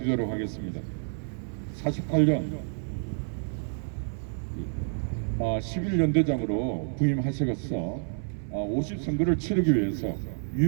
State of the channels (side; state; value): left; silent; digital silence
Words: 하겠습니다. 48년 11연대장으로 부임하셔서 50선거를 치르기 위해서